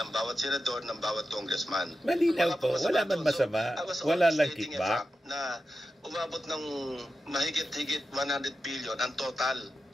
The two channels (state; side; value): normal; both; correlation 0.91